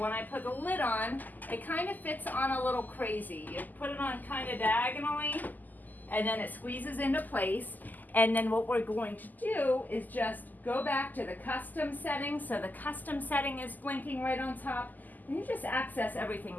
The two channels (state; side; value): late; right; 0.084 ms